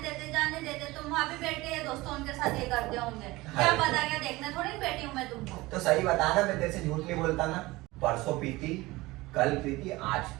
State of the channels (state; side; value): quieter; left; 20.4 dB